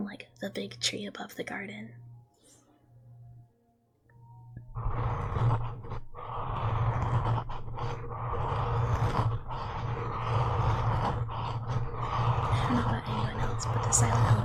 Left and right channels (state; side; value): identical; both; correlation 1.00